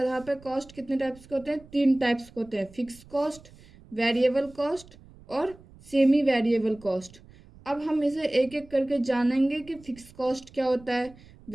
पर कॉस्ट कितने टाइप्स के होते हैं? 3 टाइप्स के होते हैं, फिक्स कॉस्ट, वेरिएबल कॉस्ट और सेमी वेरिएबल कॉस्ट। अब हम इसे एक एक करके जानेंगे कि फिक्स कॉस्ट क्या होता है,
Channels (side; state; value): right; noise; rumble, 23 dB below the sound